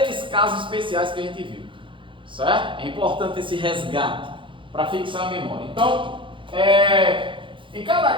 casos especiais que a gente viu. Certo? É importante esse resgate para fixar a memória. Então, em cada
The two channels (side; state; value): left; late; 0.24 ms